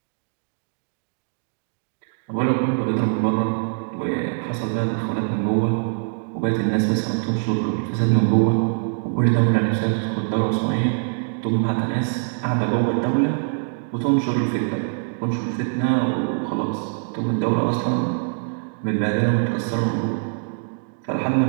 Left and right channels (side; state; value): left; silent; digital silence